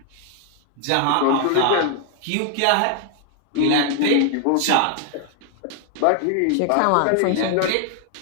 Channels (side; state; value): both; different; correlation 0.00